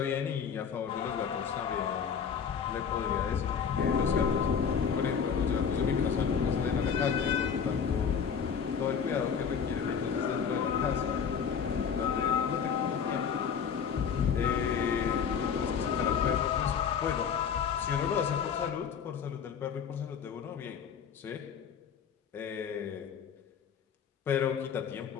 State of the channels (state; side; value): quieter; right; 7.0 dB